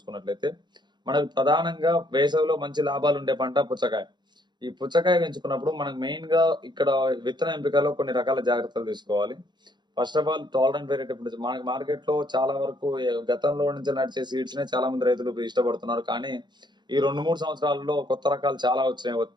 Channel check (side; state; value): left; late; 0.21 ms